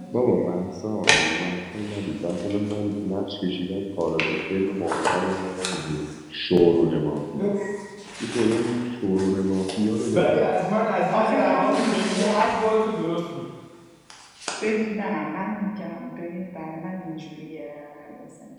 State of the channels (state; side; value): identical; both; correlation 1.00